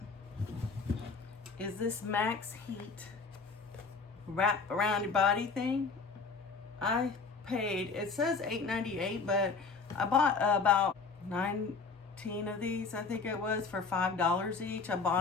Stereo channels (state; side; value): quieter; right; 4.7 dB